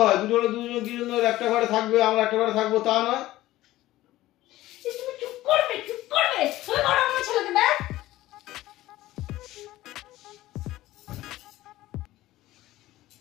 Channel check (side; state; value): right; quieter; 16.1 dB